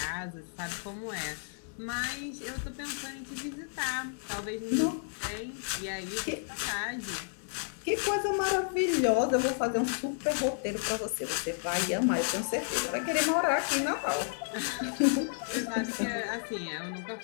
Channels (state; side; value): silent; right; digital silence